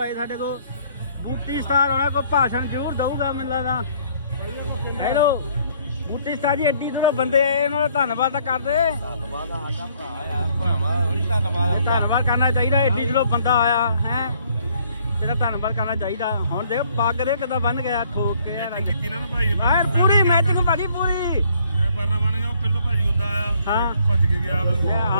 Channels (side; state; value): both; inverted; correlation -0.63